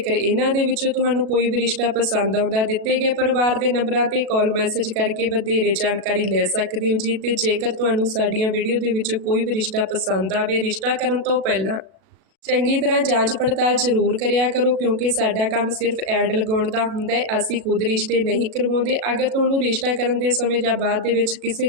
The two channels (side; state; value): left; late; 37 ms